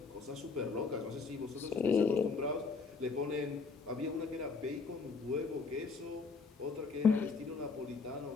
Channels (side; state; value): right; quieter; 4.7 dB